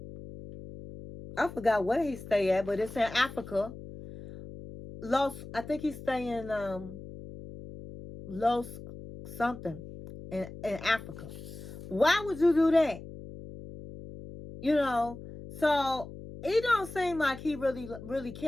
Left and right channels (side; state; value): left; noise; hum, 13 dB below the sound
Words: I forgot where he stay at, but it's in Africa. I think he's staying Los something in Africa. Why would you do that? You know, so he don't seem like he really